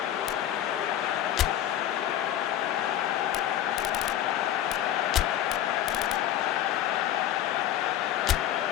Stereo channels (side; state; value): right; quieter; 11.8 dB